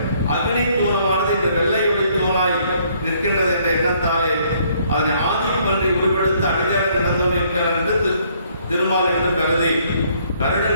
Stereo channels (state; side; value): inverted; both; correlation -0.65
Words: அக்னி தூணமானது இந்த வெள்ளை ஒளி தூணாய் நிற்கின்றது என்ற எண்ணத்தாலே அதனை ஆதி பன்றி உருவெடுத்து அடிகாரி நடந்தவர்கள் என்று திருமால் என்று கருதி